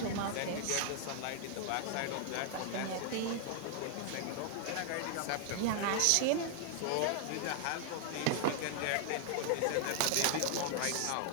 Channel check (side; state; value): both; different; correlation 0.00